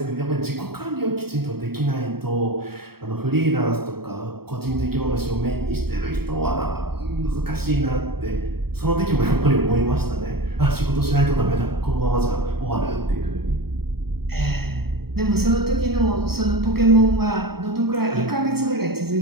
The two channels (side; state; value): left; late; 0.95 ms